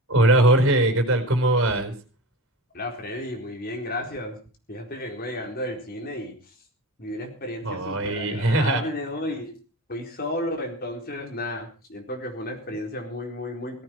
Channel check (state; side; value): normal; both; correlation 0.30